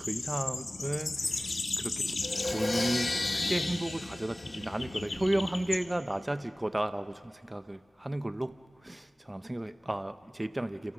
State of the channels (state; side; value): normal; both; correlation 0.97